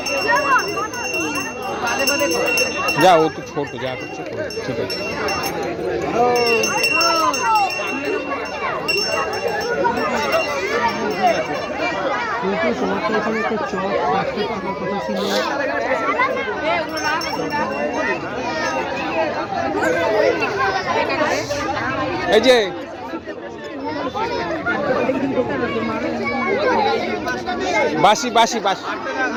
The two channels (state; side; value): identical; both; correlation 1.00